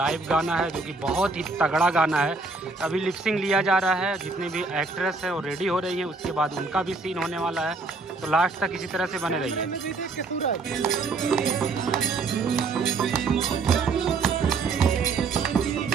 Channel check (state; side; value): quieter; left; 4.0 dB